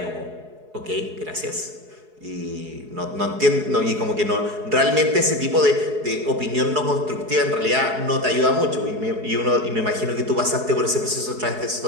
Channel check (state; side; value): late; left; 4.7 ms